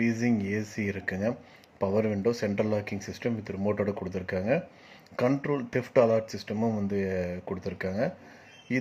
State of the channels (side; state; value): both; identical; correlation 1.00